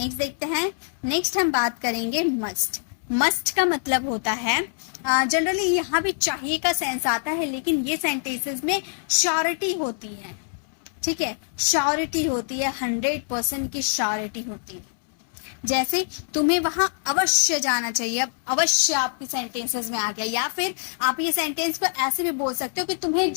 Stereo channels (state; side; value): silent; right; 62 dB below the other